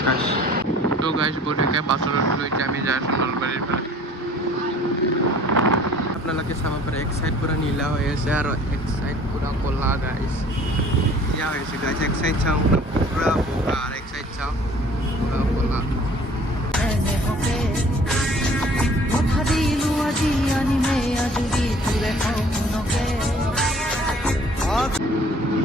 গাইজ তো গাইজ বঢ়িয়াকৈ বাছত উঠিলোঁ এতিয়া আমি যাই আছোঁ নলবাৰীৰ ফালে আপোনালোকে চাব পাৰে এক চাইড পূৰা নীলা হৈ আছে আৰু এক চাইড পূৰা ক'লা গাইজ ইয়া হৈ আছে গাইজ এক চাইড চাওঁ পূৰা বগা আৰু এক চাইড চাওঁ পূৰা ক'লা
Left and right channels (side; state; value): both; normal; correlation 0.52